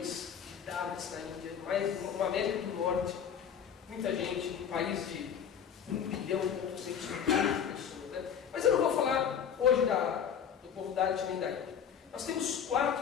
de Dalits na Índia, mais uma América do Norte, muita gente, um país de 1 bilhão e 200 milhões de pessoas. Né? Mas eu não vou falar hoje do povo Dalit nem da Índia. Nós temos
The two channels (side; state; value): right; quieter; 7.9 dB